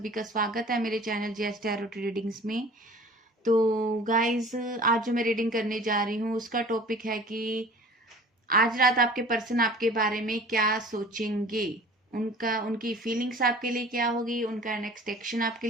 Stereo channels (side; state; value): both; normal; correlation 0.45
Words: का स्वागत है मेरे चैनल जेएस टैरो रीडिंग्स में। तो गाइस, आज जो मैं रीडिंग करने जा रही हूँ उसका टॉपिक है कि आज रात आपके पर्सन आपके बारे में क्या सोचेंगे, उनकी फीलिंग्स आपके लिए क्या होगी, उनका नेक्स्ट एक्शन आपके